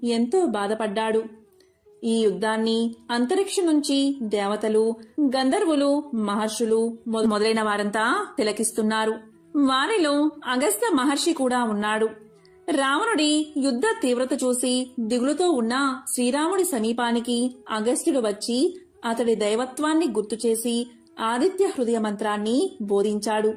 ఎంతో బాధపడ్డాడు. ఈ యుద్ధాన్ని అంతరిక్షం నుంచి దేవతలు, గంధర్వులు, మహర్షులు మొదలైన వారంతా తిలకిస్తున్నారు. వారిలో అగస్త్య మహర్షి కూడా ఉన్నాడు. రావణుడి యుద్ధ తీవ్రత చూసి దిగులుతో ఉన్న శ్రీరాముడి సమీపానికి అగస్త్యుడు వచ్చి అతడి దైవత్వాన్ని గుర్తుచేసి ఆదిత్య హృదయ మంత్రాన్ని బోధించాడు.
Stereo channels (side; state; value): both; identical; correlation 1.00